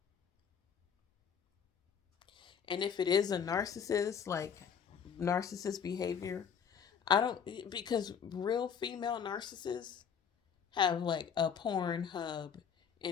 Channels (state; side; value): quieter; right; 7.4 dB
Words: And if it is a narcissist, like narcissist behavior, I don't, because real female narcissists have like a porn hub